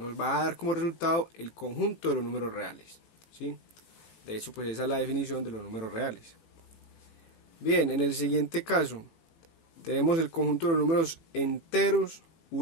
va a dar como resultado el conjunto de los números reales, ¿sí? De hecho, pues esa es la definición de los números reales. Bien, en el siguiente caso tenemos el conjunto de los números enteros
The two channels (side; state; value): right; late; 18 ms